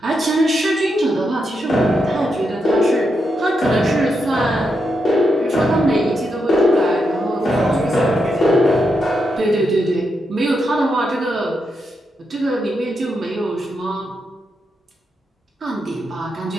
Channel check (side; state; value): both; normal; correlation 0.83